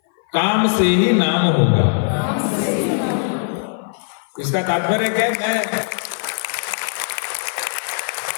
काम से ही नाम होगा। इसका तात्पर्य क्या है? मैं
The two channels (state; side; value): silent; right; 58 dB below the other